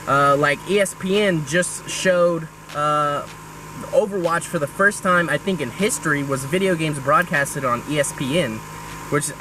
like ESPN just showed Overwatch for the first time, I think in history, was video games broadcasted on ESPN, which is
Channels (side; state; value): both; identical; correlation 1.00